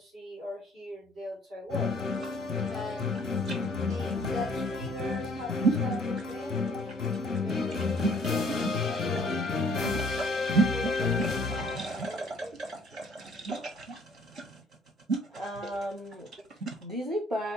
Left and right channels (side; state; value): both; normal; correlation 0.59